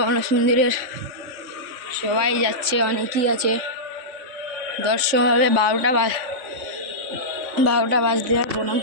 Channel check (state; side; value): late; left; 3.5 ms